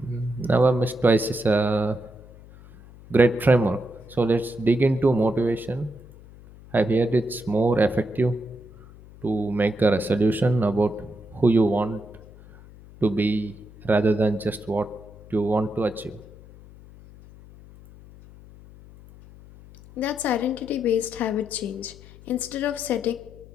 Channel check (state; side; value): noise; left; hum, 21 dB below the sound